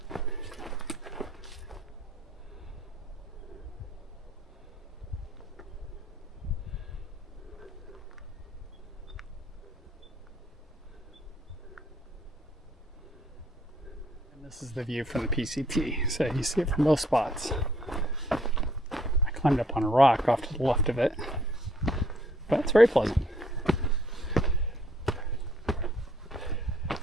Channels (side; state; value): both; normal; correlation 0.64